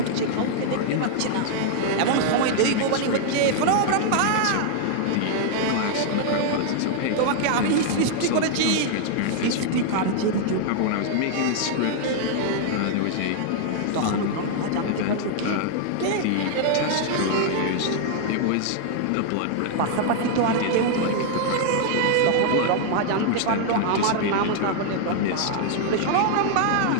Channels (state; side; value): different; both; correlation 0.00